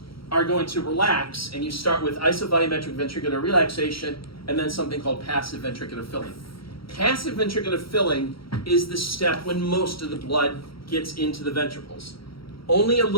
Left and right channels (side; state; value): right; late; 0.75 ms